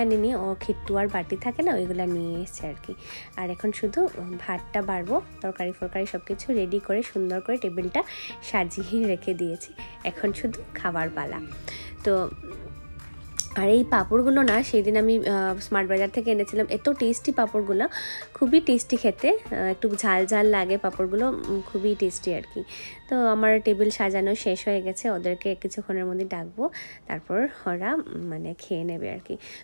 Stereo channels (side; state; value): both; inverted; correlation -1.00